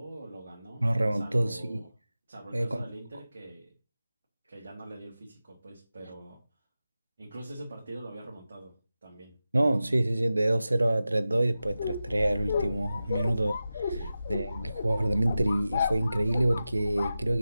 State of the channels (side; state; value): both; inverted; correlation -0.94